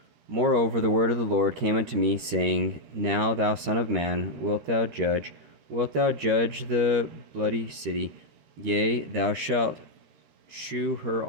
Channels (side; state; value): left; late; 13 ms